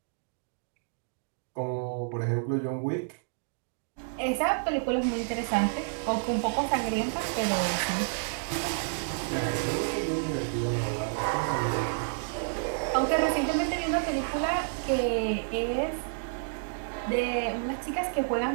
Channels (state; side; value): silent; left; digital silence